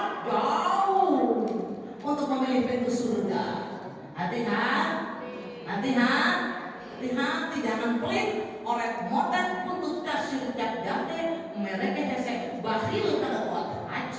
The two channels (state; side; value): identical; both; correlation 1.00